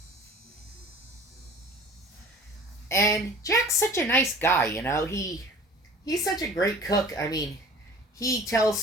And Jack's such a nice guy, you know. He's such a great cook. I mean, he tells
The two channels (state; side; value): normal; both; correlation 0.44